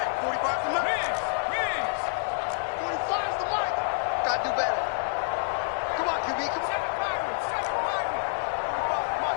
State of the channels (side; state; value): right; silent; 59 dB below the other